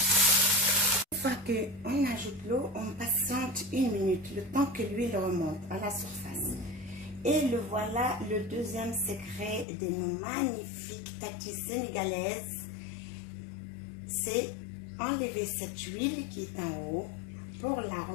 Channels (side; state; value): right; drops out; at 9.7 s